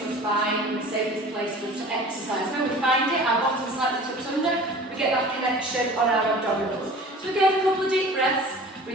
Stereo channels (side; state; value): both; normal; correlation 0.43